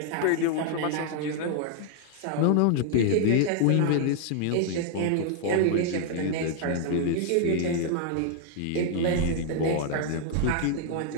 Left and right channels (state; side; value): different; both; correlation 0.00